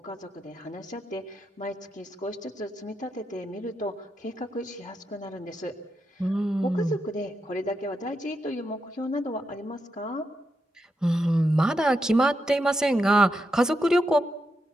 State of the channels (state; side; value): normal; both; correlation 0.85